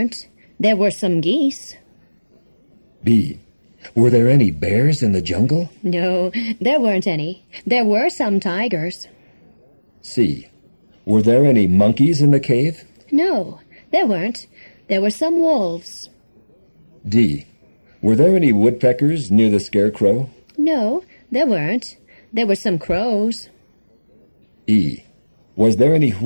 There were some geese. B. Were there any bears in the jungle? No, there weren't any. There were some tigers. C. Were there any monkeys in the cave? No, there weren't. There were some wolves. D. Were there any woodpeckers near the scarecrow? No, there weren't. There were some crows. E. Was there any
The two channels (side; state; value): both; inverted; correlation -1.00